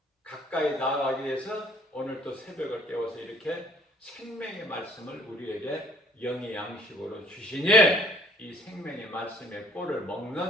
가까이 나아가기 위해서 오늘도 새벽을 깨워서 이렇게 생명의 말씀을 우리에게 영의 양식으로 주시니, 이 생명의 말씀의 꼴을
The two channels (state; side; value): normal; both; correlation 0.59